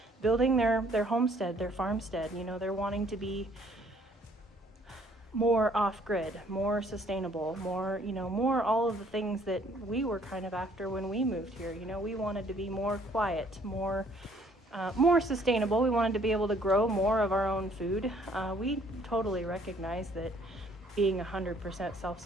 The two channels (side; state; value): both; normal; correlation 0.61